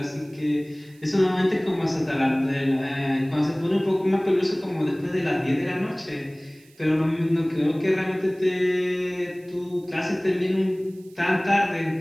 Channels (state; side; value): noise; right; hiss, 29 dB below the sound